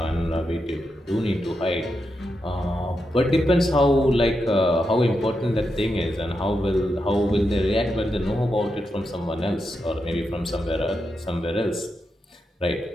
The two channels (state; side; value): normal; both; correlation 0.86